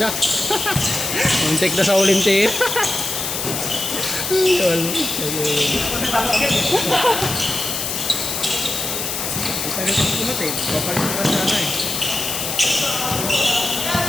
Muntik na sa Olympic.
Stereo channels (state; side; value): noise; left; hiss, 3 dB below the sound